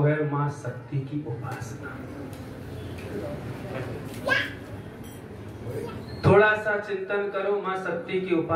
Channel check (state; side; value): identical; both; correlation 1.00